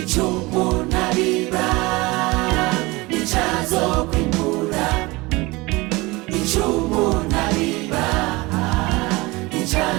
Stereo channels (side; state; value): left; quieter; 22.9 dB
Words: umuntu abiba nicazo kwimbura ico umuntu abiba